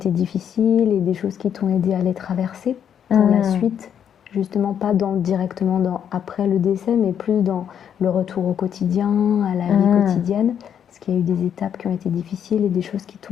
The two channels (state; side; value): quieter; right; 8.7 dB